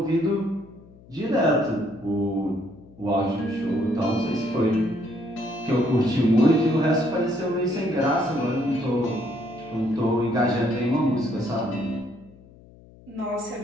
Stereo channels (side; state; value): left; noise; hum, 23 dB below the sound